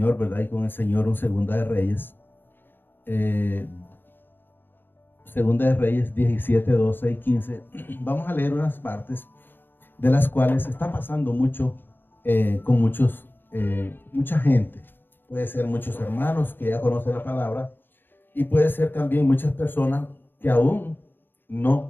¿verdad? Y con el Señor un Segunda de Reyes. Segunda de Reyes 17, 12 y 15. Vamos a leer unas partes de las cuales está pasando mucho con mucha gente. Puede ser muchos hermanos que ya conocen la palabra y puede ser también muchas personas que aún no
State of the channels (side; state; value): right; late; 0.098 ms